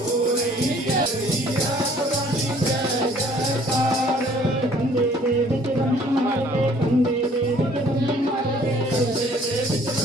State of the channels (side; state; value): both; normal; correlation 0.57